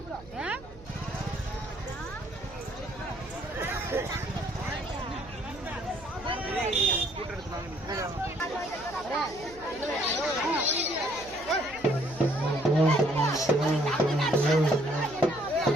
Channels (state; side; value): noise; right; hum, 20 dB below the sound